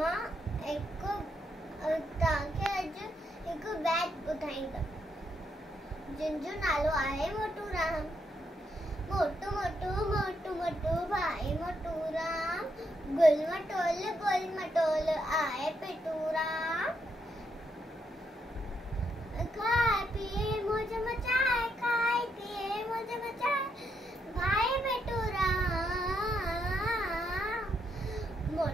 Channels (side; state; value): both; normal; correlation 0.78